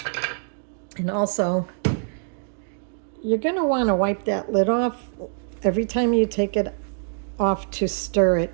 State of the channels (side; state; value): left; silent; digital silence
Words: And also, you're going to want to wipe that lid off every time you take it off to stir it,